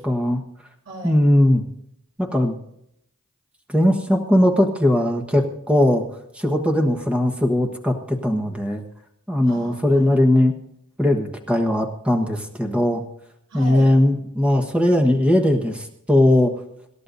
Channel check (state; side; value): normal; both; correlation 0.92